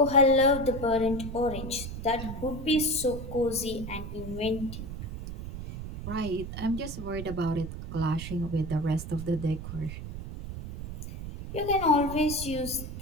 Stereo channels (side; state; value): right; noise; rumble, 8 dB below the sound